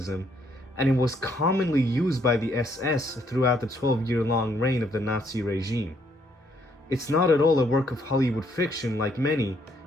and it was commonly used by the SS throughout the 12-year-long reign of the Nazi regime. It's not at all a work of Hollywood fiction like many,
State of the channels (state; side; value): normal; both; correlation 0.70